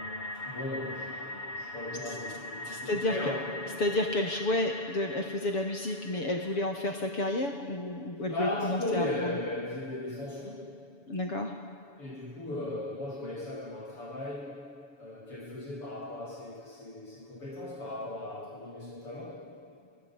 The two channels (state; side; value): late; right; 7.0 ms